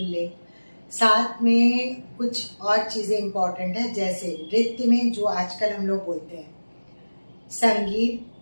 साथ में कुछ और चीजें इंपॉर्टेंट है जैसे नृत्य में जो आजकल हम लोग बोलते हैं संगीत,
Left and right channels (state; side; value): inverted; both; correlation -1.00